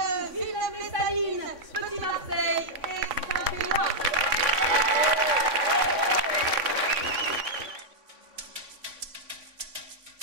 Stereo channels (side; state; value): left; late; 3.6 ms